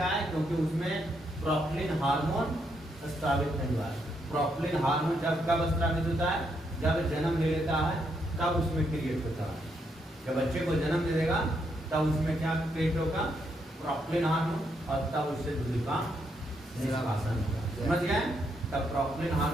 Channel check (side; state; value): both; normal; correlation 0.77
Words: है? क्योंकि उसमें प्रॉक्टिलिन हार्मोन स्रावित नहीं हुआ है। प्रॉक्टिलिन हार्मोन जब कब स्रावित होता है? जब जन्म ले लेता है तब उसमें क्रिएट होता है। जब बच्चे को जन्म दे देगा तब उसमें क्या क्रिएट होगा? प्रॉक्टिलिन हार्मोन, और तब उससे दूध का निष्कासन होगा। समझ गए? तब प्रॉक्टिलिन